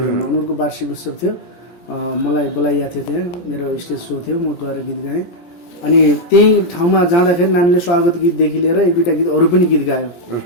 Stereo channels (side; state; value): right; late; 17 ms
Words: उनीहरूको वार्षिक उत्सव थियो, मलाई बोलाइएको थियो, त्यहाँ मेरो स्टेज सो थियो, म गएर गीत गाएँ। अनि त्यही ठाउँमा जाँदाखेरि नानीले स्वागत गीतदेखि लिएर 1-2टा गीत अरू पनि गीत गायो,